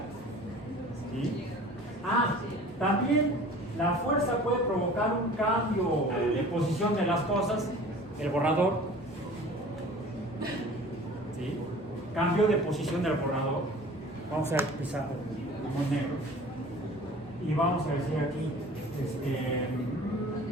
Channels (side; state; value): both; normal; correlation 0.44